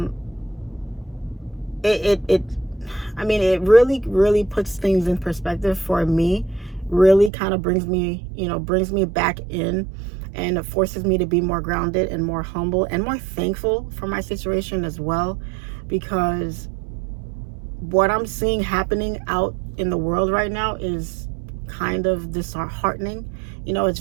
really puts things in perspective for me. Really kind of brings me back in, and it forces me to be more grounded and more humble and more thankful for my situation as well, because what I'm seeing happening out in the world right now is kind of disheartening. It's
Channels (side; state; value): left; drops out; at 7.3 s